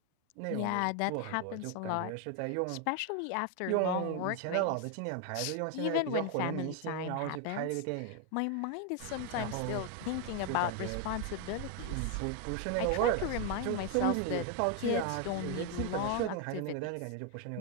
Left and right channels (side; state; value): both; different; correlation 0.01